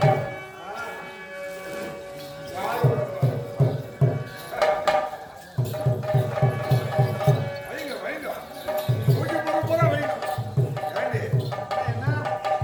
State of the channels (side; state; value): both; identical; correlation 1.00